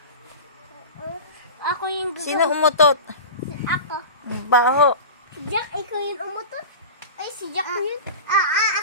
Ako yung gusto. Sino umutot? Ako. Baho. Si Jack, ikaw yung umutot? Ay, si Jack yun.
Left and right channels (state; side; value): inverted; both; correlation -0.31